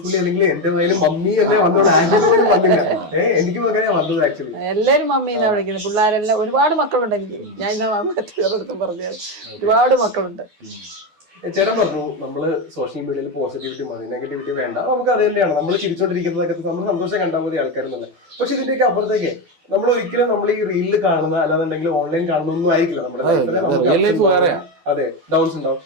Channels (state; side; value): late; left; 12 ms